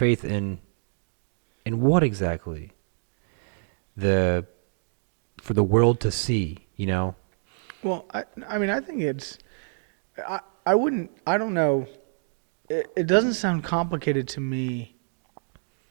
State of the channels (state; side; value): silent; left; digital silence